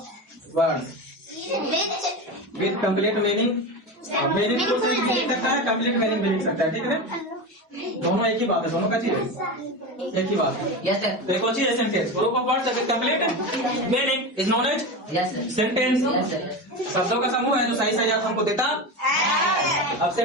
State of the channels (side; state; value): both; normal; correlation 0.22